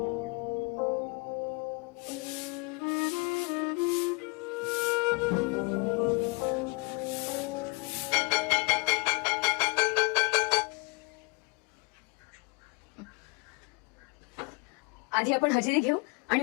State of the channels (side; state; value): right; quieter; 28.5 dB